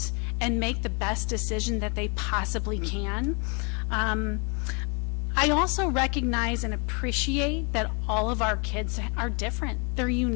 and make the best decision that they possibly can. I also recognize and appreciate that all of our kids are different. They're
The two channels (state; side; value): quieter; right; 35.5 dB